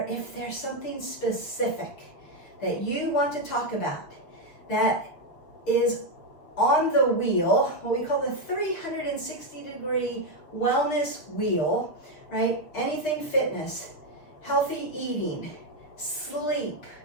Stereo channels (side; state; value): right; late; 6.4 ms